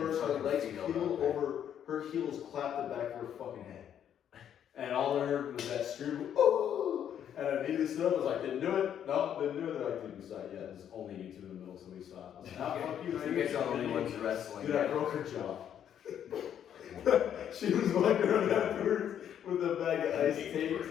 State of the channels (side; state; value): right; quieter; 9.5 dB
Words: her legs peeled over, her heels clapped the back of her fucking head. And all I heard was that scream, oh! And I needed to sit up. I was like, didn't do it. No, didn't do it. They're like, dude, we saw it. Yeah, there's only you two in the middle, so we saw it. I was like, nah, fuck you. You guys are the only ones wrestling. Dude, I broke her jaw. She was walking around afterwards with a bag of ice